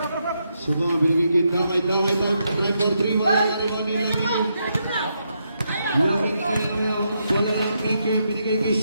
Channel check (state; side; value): inverted; both; correlation -0.81